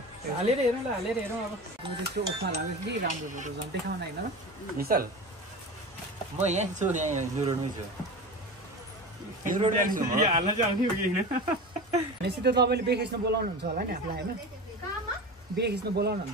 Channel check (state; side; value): normal; both; correlation 0.30